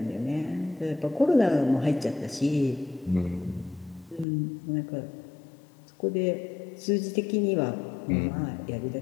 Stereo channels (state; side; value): drops out; right; at 4.2 s